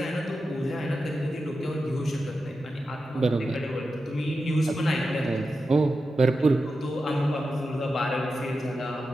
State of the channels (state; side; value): normal; both; correlation 0.90